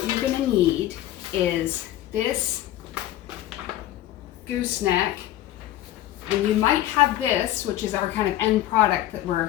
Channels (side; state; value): right; quieter; 13.6 dB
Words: you're going to need is this gooseneck. And you might have this, which is our kind of end product that